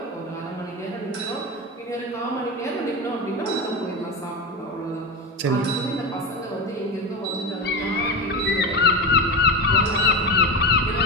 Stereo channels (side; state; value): both; normal; correlation 0.19